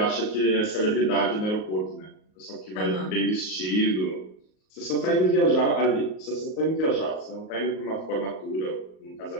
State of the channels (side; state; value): right; late; 38 ms